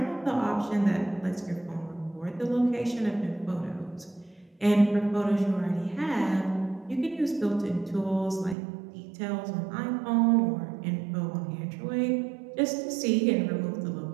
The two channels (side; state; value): left; drops out; at 8.6 s